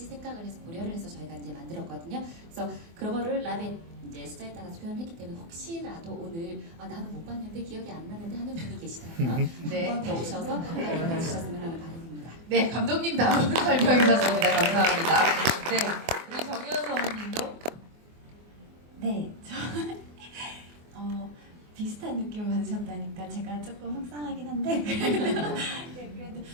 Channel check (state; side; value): late; left; 24 ms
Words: 생각을 해서 고려를 해서 저희가 이제 만들었거든요. 그래서 그거를 랍의 이제 숫자에 따라서 표현했기 때문에 혹시라도 오늘 나는 못 봤는데 기억이 안 나는데 하는 분이 계시다면 네. 한 번 더 오셔서 확인해 주셨으면 하는 바람입니다. 네, 감독님 다음 설명해 주셨습니다. 감사합니다. 네, 우리 정혜원 성우님도 네, 비슷한 느낌을 받으셨다니까 제가 조금 속상하긴 한데 그래도